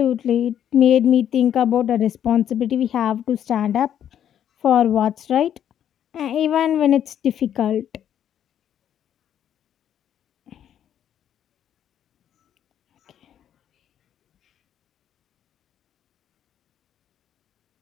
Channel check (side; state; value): right; quieter; 9.9 dB